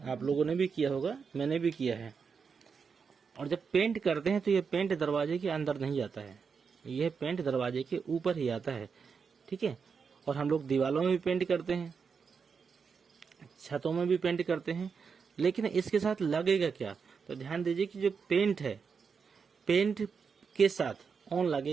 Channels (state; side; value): quieter; left; 5.8 dB